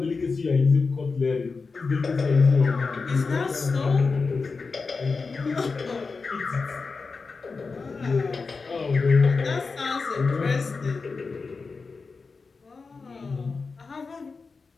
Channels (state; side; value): quieter; right; 4.5 dB